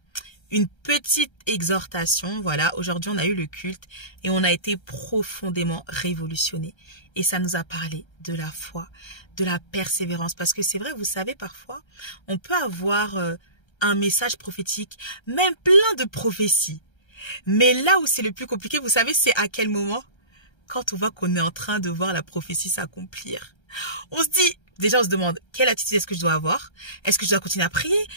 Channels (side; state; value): right; late; 1.3 ms